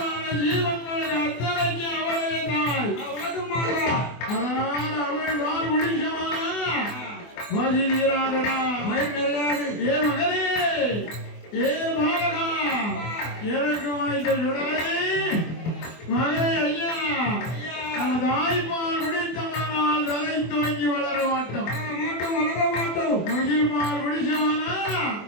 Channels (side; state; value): right; late; 24 ms